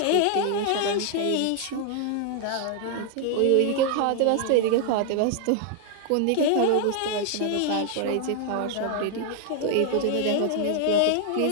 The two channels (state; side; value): different; both; correlation 0.00